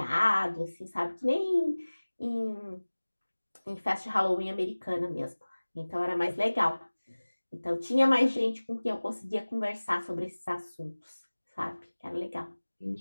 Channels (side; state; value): both; inverted; correlation -1.00